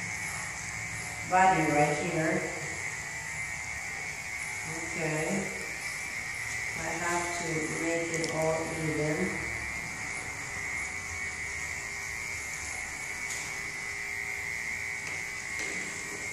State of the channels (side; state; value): both; identical; correlation 1.00